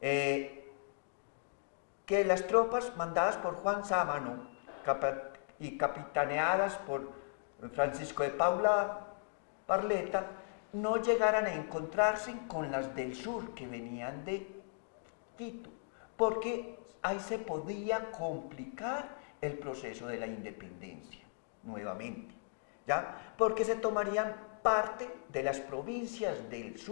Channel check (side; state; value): right; silent; digital silence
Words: las tropas mandadas por Juan Sámano y capitaneadas por Francisco de Paula Barleta no llegaran a encontrarse con las del sur que venían de Quito, porque ahí se podía complicar el proceso de la independencia nuevamente, ¿ya? Porque se tomarían parte de las provincias del